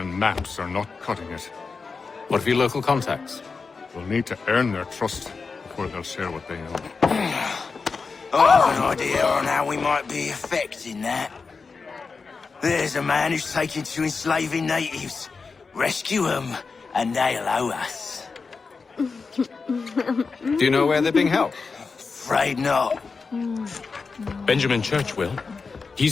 maps are not cutting it. What of your local contacts? We'll need to earn their trust before they'll share what they know. I have an idea on how we might be affecting that. There's a man who's taken to enslaving natives. Rescue them, and they'll owe us. Do you know where they're being held? Afraid not. Benjamin Churchwill.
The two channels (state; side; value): quieter; right; 4.7 dB